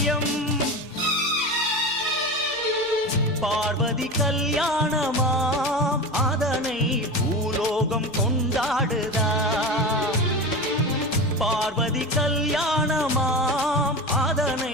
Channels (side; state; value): both; normal; correlation 0.27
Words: பார்வதி கல்யாணமாம் அதனை பூலோகம் கொண்டாடுதாம். பார்வதி கல்யாணமாம்